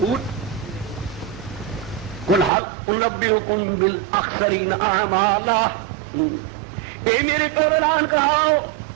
قل هل انبئکم بالاخسرین اعمالا، اے میرے کو اعلان کراؤ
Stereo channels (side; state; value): left; drops out; at 2.5 s